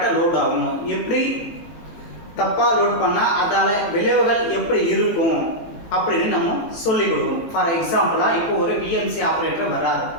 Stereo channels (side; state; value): right; late; 18 ms